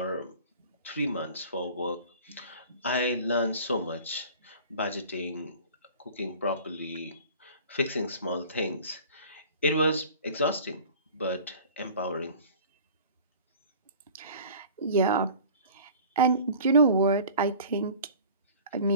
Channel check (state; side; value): inverted; both; correlation -0.44